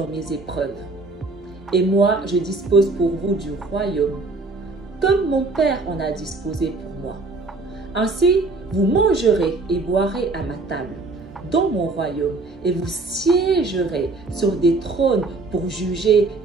mes épreuves. Et moi, je dispose pour vous du royaume, comme mon Père en a disposé pour moi. Ainsi, vous mangerez et boirez à ma table, dans mon royaume, et vous siégerez sur des trônes pour juger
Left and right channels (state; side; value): quieter; left; 3.5 dB